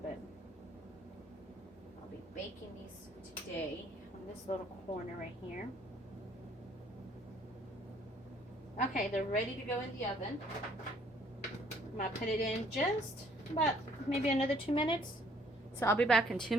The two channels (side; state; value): both; normal; correlation 0.61